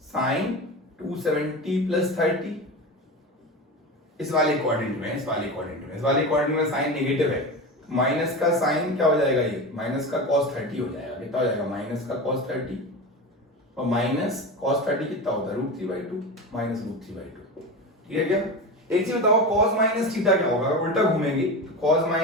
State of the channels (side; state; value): both; normal; correlation 0.25